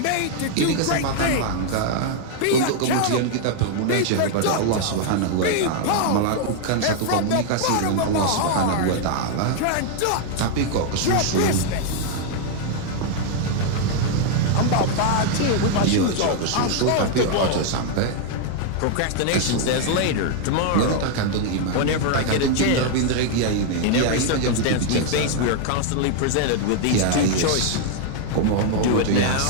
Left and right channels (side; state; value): both; different; correlation 0.00